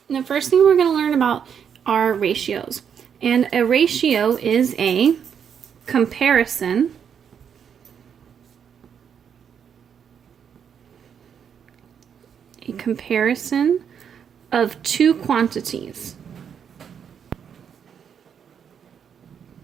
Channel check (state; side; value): quieter; left; 7.8 dB